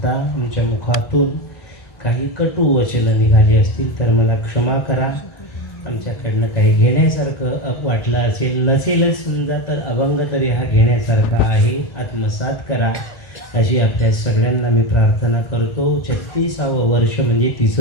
तुमच्या मुखातून काही कटू वचनं निघाली असतील तर मला क्षमा करा. आमच्याकडनं काही घेण्यासारखं वाटलं असेल, नसेलच समजा तर अभंग तरी हा घेण्यासारखा आहे. आत्मसात करा अशी आपल्या सगळ्यांना मी प्रार्थना करतो. 36वे वर्ष म्हणजे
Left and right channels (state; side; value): late; right; 2.0 ms